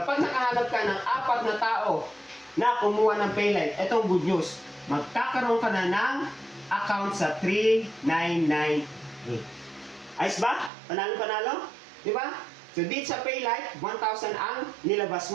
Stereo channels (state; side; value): drops out; left; at 10.7 s